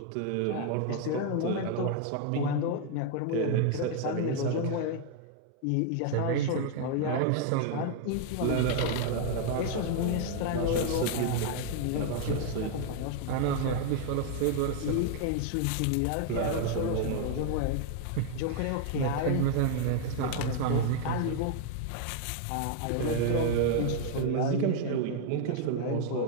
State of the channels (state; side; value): different; both; correlation 0.00